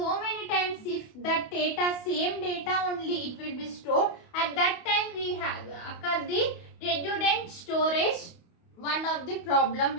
many times. If that data, same data only, it will be stored. At that time we have occur the redundant storage. One of the problem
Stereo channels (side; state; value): right; late; 28 ms